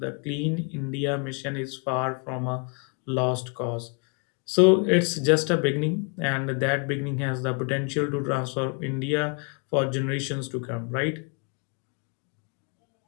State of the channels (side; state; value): right; quieter; 35.7 dB